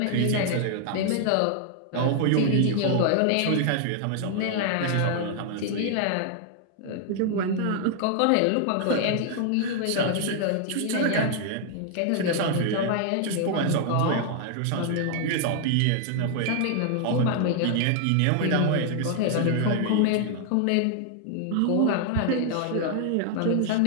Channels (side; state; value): both; different; correlation 0.00